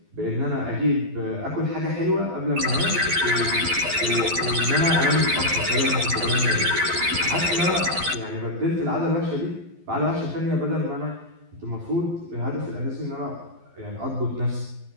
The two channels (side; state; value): left; late; 12 ms